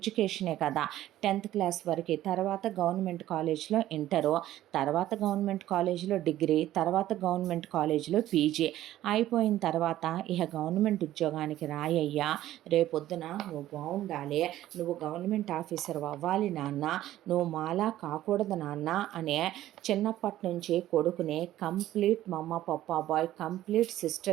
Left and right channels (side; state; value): left; quieter; 13.8 dB